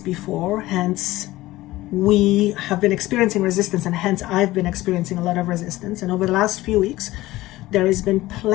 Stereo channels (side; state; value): right; quieter; 17.6 dB